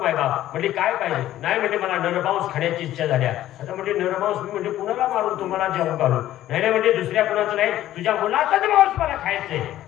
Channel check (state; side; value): quieter; right; 13.4 dB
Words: मायबाप म्हणजे काय पाहिजे, नाही म्हणजे मला नरमांस खाण्याची इच्छा झाल्या. आता म्हणजे नरमांस मी म्हणजे कुणाला मारून तुम्हाला जेवण घालू, नाही म्हणजे दुसऱ्या कुणाचं नाही, तुझ्या मुलाचाच मांस मला खायचंय.